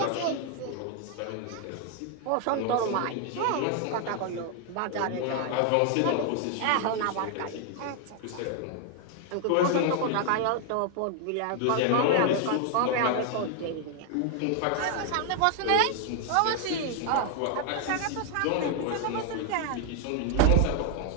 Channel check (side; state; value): both; different; correlation 0.00